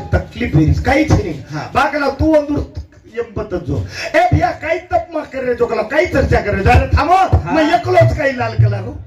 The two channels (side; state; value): both; identical; correlation 1.00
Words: तकलीफ होईल काहीच नाही हा. बाकला तू अंदूर यंपतच जो ए भैया काही तप मा कर रे जोकला काही चर्चा कर रे जरा थांबो हा. मैं एकलोच काही लाल कला गो